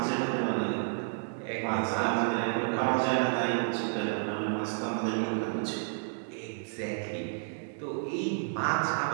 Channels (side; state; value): left; silent; digital silence